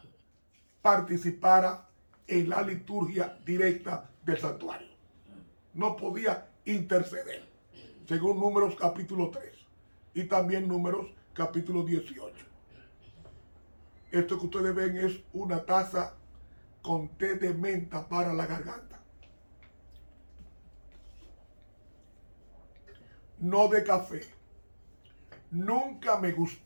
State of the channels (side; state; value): both; inverted; correlation -1.00